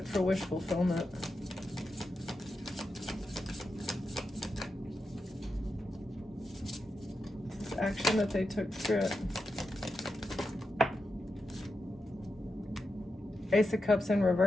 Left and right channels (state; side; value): normal; both; correlation 0.88